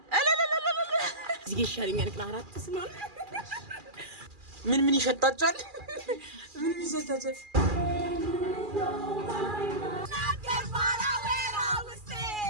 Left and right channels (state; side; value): late; left; 2.4 ms